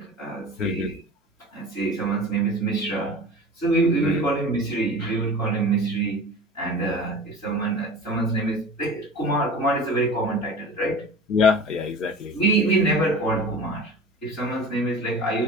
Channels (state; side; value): normal; both; correlation 0.37